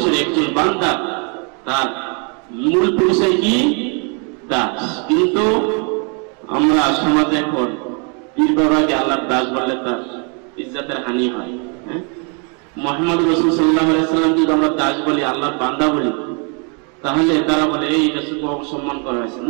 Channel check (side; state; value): left; quieter; 37.1 dB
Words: একজন বান্দা, তার মূল পরিচয় কি? দাস। কিন্তু আমরা সমাজে এখন পীর বাবাকে আল্লাহর দাস বললে তার ইজ্জতের হানি হয়। মুহাম্মদ রাসূল সাল্লাল্লাহু আলাইহি সাল্লাম যদি আমরা দাস বলি, আল্লাহর বান্দা বলি, তাহলে তারা বলে এই রাসূলকে অসম্মান করা হয়েছে।